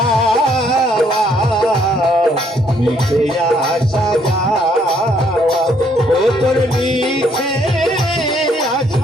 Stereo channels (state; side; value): normal; both; correlation 0.68